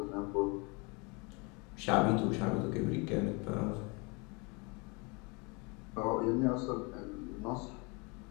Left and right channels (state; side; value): quieter; right; 30.0 dB